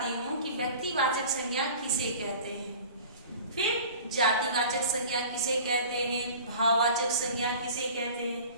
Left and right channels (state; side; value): inverted; both; correlation -0.41